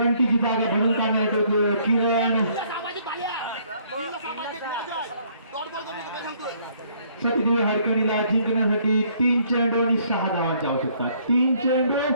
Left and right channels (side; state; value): both; inverted; correlation -0.64